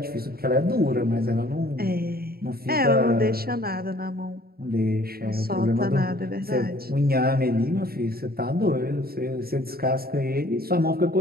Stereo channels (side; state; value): left; late; 0.44 ms